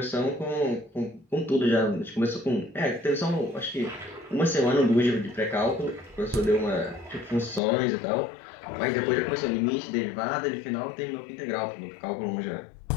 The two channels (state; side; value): drops out; right; at 7.6 s